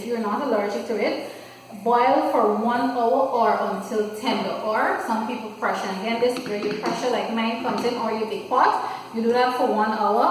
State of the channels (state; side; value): identical; both; correlation 1.00